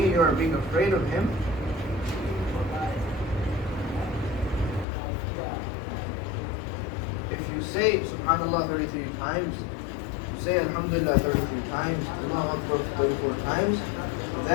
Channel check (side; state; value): right; drops out; at 4.9 s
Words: you are being afraid of him. if you say Subhanallah 33 times, you say Alhamdulillah 33 times, Allahu Akbar 34 times,